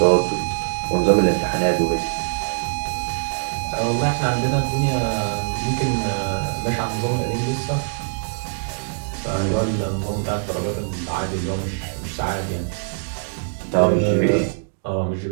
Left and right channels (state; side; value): silent; left; digital silence